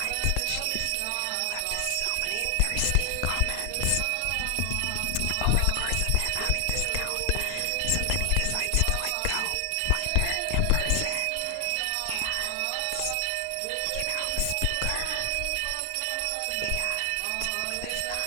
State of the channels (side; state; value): both; different; correlation 0.00